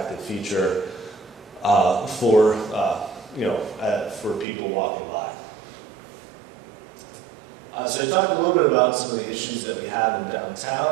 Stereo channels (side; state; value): left; drops out; at 4.5 s